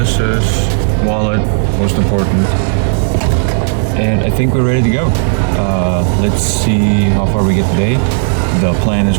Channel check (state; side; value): silent; left; digital silence